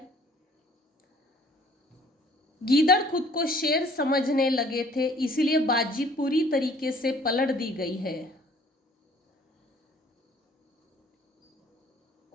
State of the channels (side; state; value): both; normal; correlation 0.56